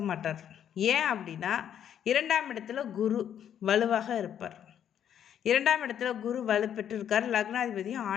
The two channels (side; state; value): right; quieter; 9.5 dB